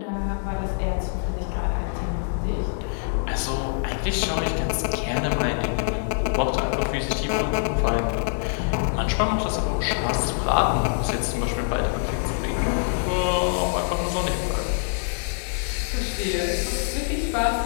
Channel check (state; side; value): silent; right; digital silence